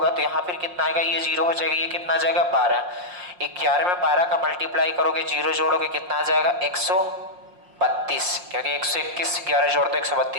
तो यहाँ फिर कितना आएगा, ये 0 हो जाएगा, ये कितना आ जाएगा 12। 11 में 12 का मल्टीप्लाई करोगे, 0 जोड़ोगे, कितना आ जाएगा 132, क्योंकि 121 11 जोड़ दो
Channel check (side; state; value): left; late; 5.6 ms